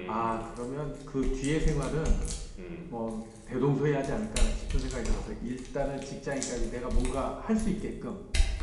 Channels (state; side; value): identical; both; correlation 1.00